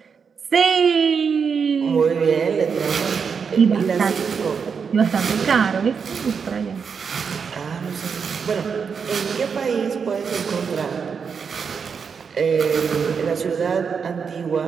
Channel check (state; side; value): quieter; left; 6.1 dB